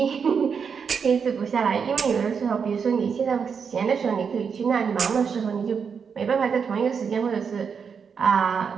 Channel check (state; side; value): quieter; left; 6.3 dB